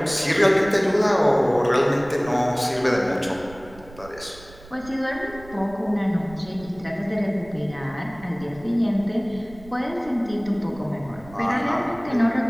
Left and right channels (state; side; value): noise; right; rumble, 20 dB below the sound